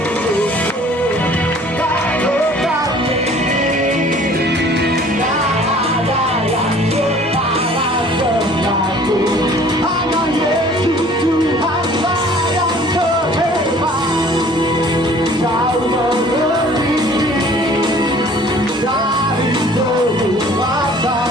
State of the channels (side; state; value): both; normal; correlation 0.52